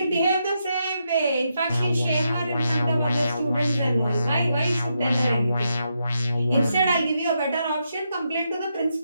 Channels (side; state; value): both; inverted; correlation -0.82